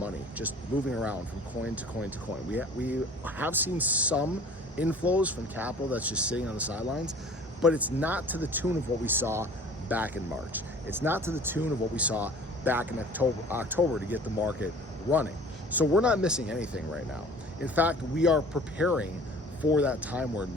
just moving around from coin to coin to coin. We have seen some inflows from capital that's just sitting on the sidelines, but it's not to the tune of what we saw back in March. It's not to the tune of what we saw back in October to get the market running. So we're not missing anything right now. In fact, we are preparing for that time where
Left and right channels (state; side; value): normal; both; correlation 0.47